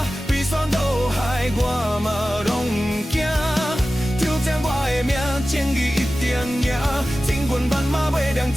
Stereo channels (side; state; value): both; normal; correlation 0.95